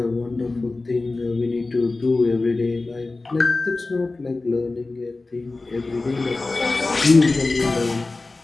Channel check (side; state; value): right; quieter; 3.4 dB